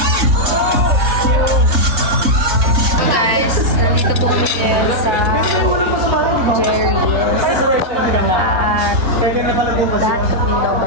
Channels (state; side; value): late; left; 3.7 ms